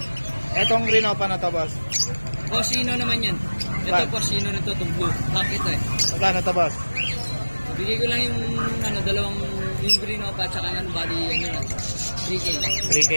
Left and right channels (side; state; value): both; inverted; correlation -1.00